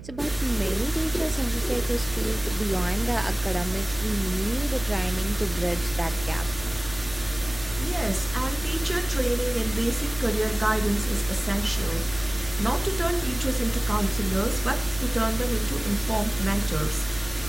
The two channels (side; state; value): right; noise; hum, 15 dB below the sound